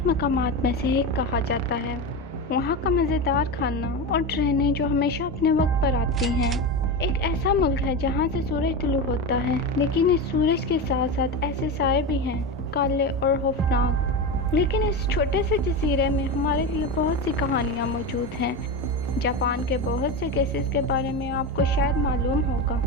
مقامات میں سے ایک کہا جاتا ہے، وہاں کا مزیدار کھانا اور ٹرینیں جو ہمیشہ اپنے وقت پر آتی ہیں۔ ایک ایسا ملک ہے جہاں سے سورج طلوع ہوتا ہے، لیکن اس سورج کے ساتھ ساتھ ایسے سائے بھی ہیں، کالے اور خوفناک۔ لیکن اس چھوٹے سے جزیرے میں ہمارے لیے بہت سی کہانیاں موجود ہیں۔ جاپان کے بہت سے کیسز کے بارے میں آپ کو شاید معلوم ہوگا،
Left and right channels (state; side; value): normal; both; correlation 0.20